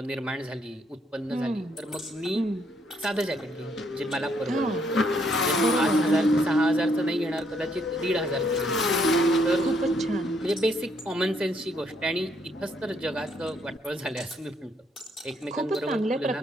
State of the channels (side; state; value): both; normal; correlation 0.71